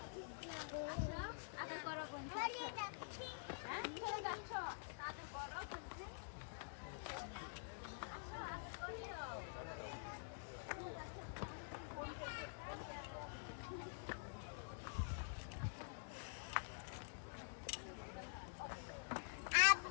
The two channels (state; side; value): silent; right; digital silence